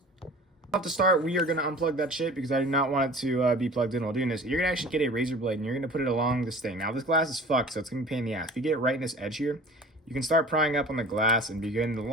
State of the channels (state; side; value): normal; both; correlation 0.43